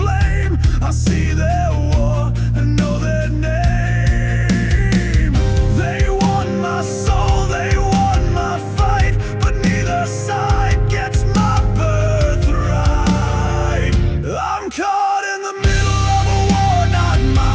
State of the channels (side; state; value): both; identical; correlation 1.00